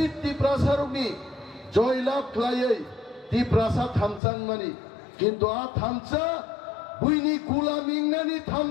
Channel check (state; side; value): drops out; right; at 4.2 s